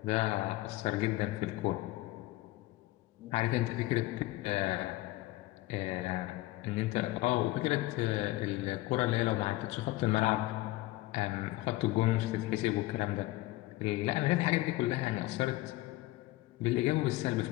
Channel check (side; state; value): right; quieter; 18.4 dB